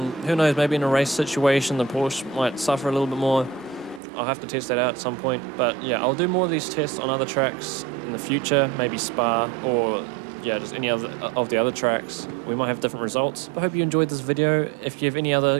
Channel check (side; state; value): left; drops out; at 4.0 s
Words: knows, maybe in a race situation, the Porsche might suffer a little bit more. I'll have to test that out at some point. But yeah, I'll do more of these tests on other tracks in the future, maybe Spa or yeah, just any other of the other tracks. We might have different results. I hope you enjoyed this video. If you have any